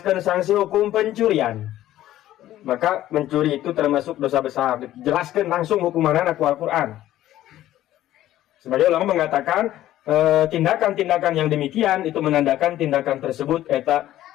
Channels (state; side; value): quieter; right; 13.7 dB